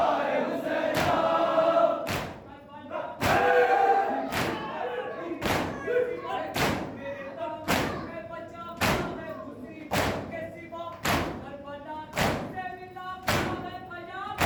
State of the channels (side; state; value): both; identical; correlation 1.00